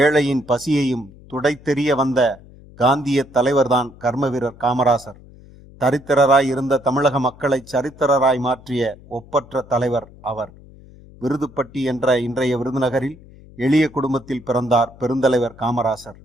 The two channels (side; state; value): left; noise; hum, 22 dB below the sound